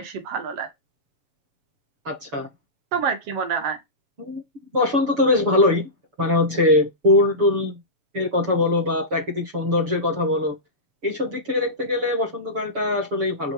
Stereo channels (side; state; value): left; late; 6.9 ms